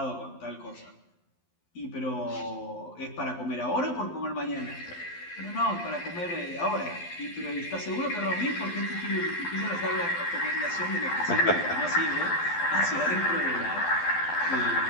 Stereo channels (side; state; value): right; late; 12 ms